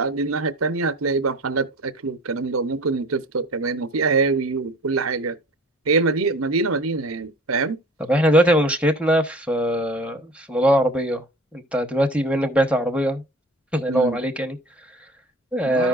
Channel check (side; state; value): both; normal; correlation 0.41